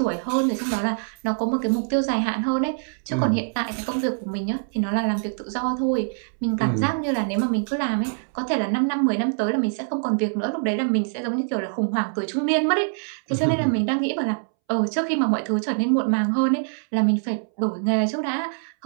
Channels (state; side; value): silent; left; 63 dB below the other